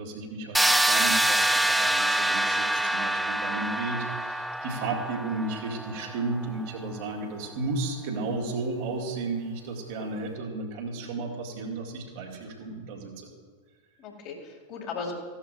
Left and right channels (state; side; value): normal; both; correlation 0.62